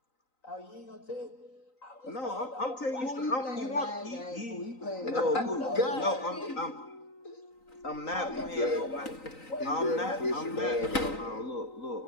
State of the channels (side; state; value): right; late; 3.9 ms